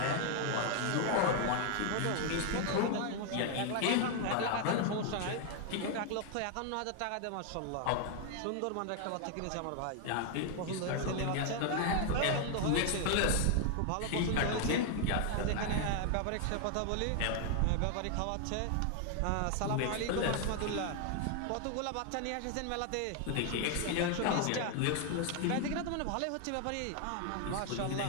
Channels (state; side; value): different; both; correlation 0.00